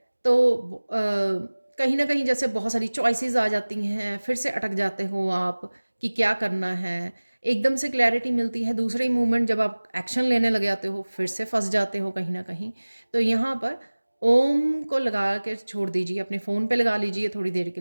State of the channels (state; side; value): inverted; both; correlation -1.00